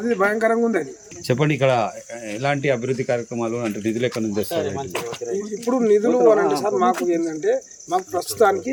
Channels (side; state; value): both; identical; correlation 1.00